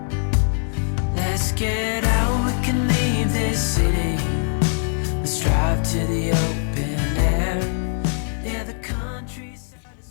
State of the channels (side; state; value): right; silent; 55 dB below the other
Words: Let's get out, we can leave this city. Let's drive to the open air. Yeah, the countryside is